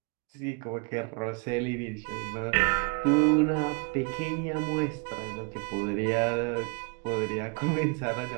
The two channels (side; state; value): left; quieter; 33.5 dB